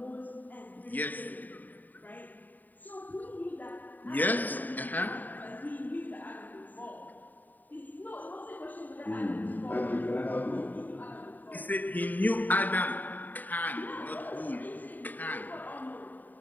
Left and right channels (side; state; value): right; late; 0.086 ms